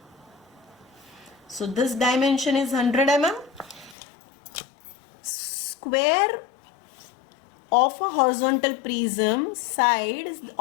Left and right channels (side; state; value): right; drops out; at 4.0 s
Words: So this dimension is 100 mm. Square of a horizontal prism, side